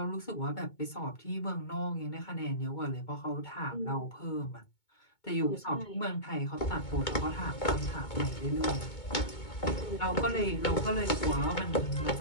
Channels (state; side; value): late; right; 2.2 ms